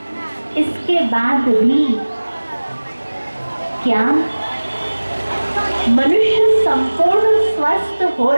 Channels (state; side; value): inverted; both; correlation -1.00